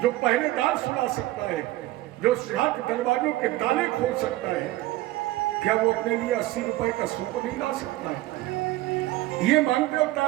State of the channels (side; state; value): left; quieter; 17.1 dB